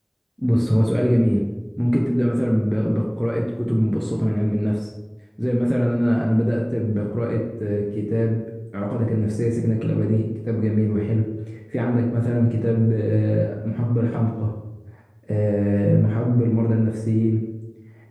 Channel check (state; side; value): identical; both; correlation 1.00